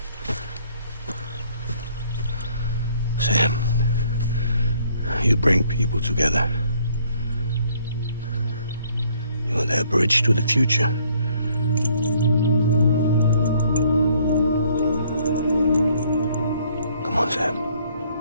You bring people together. You're their bridge to the future. Come on, Sam.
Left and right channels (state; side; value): inverted; both; correlation -0.64